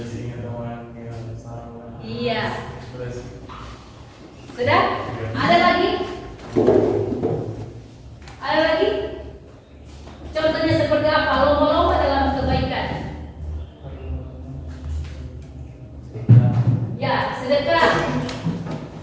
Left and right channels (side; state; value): both; identical; correlation 1.00